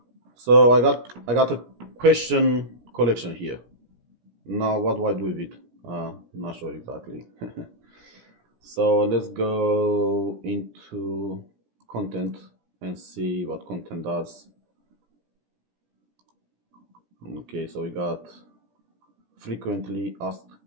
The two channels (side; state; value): left; late; 17 ms